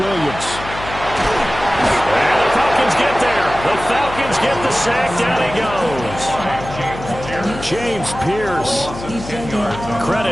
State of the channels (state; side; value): noise; left; hum, 11 dB below the sound